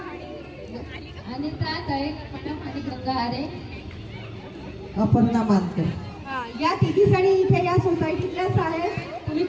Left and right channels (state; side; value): identical; both; correlation 1.00